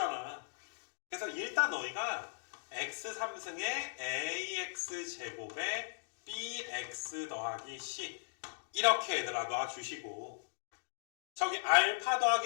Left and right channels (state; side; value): silent; right; digital silence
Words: 그래서 일단 너희가 x3승에 ax제곱에 bx 더하기 c 이렇게 얘들아 놔주시고, 저기 알파